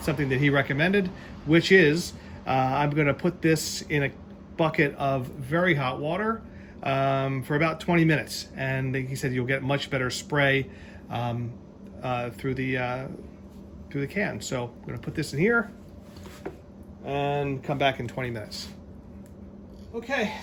that he recommended, which is I'm going to put this in a bucket of very hot water for about 20 minutes, and he said you'll get much better spray through the can. So I'm going to put this in here and come back in 20 minutes. Okay,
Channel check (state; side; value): identical; both; correlation 1.00